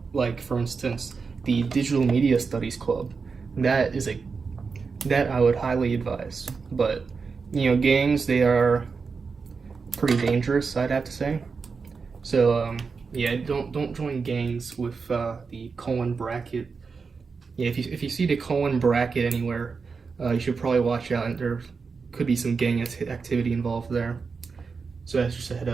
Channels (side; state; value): left; quieter; 5.0 dB